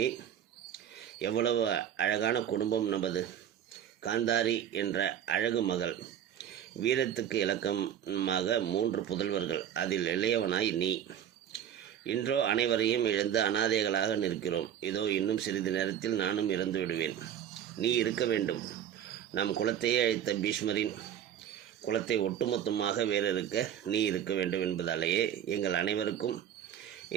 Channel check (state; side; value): quieter; left; 9.7 dB